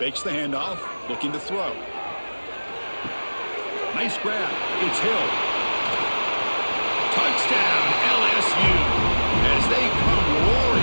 the handoff. Looking to throw. Nice grab. It's Hill. Touchdown, LSU, as they come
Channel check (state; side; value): inverted; both; correlation -1.00